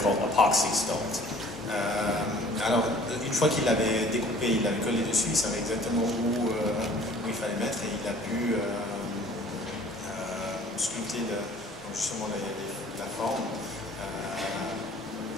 epoxy sculpt. Alors, une fois qu'il l'avait découpé, il l'avait collé dessus, il savait exactement où il fallait mettre et il a pu sculpter donc justement la forme.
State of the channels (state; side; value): normal; both; correlation 0.52